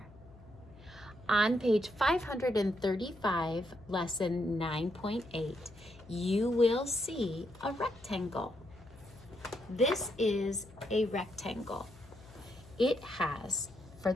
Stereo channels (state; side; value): noise; left; hum, 22 dB below the sound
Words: On page 535, lesson 9.8, you will see a rectangle. This is a rectangle. It has, for